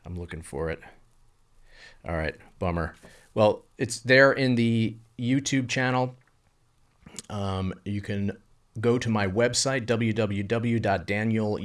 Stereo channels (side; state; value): both; identical; correlation 1.00